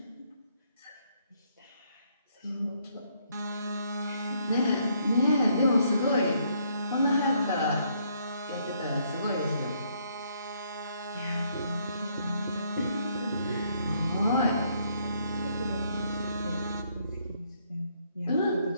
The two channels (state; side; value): inverted; both; correlation -0.70